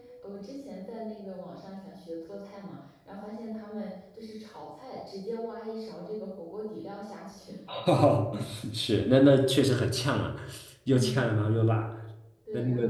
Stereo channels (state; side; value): identical; both; correlation 1.00